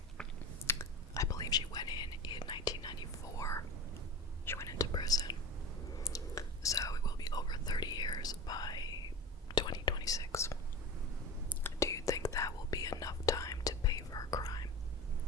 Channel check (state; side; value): normal; both; correlation 0.31